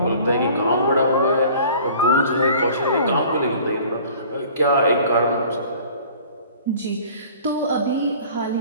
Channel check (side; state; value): both; inverted; correlation -0.48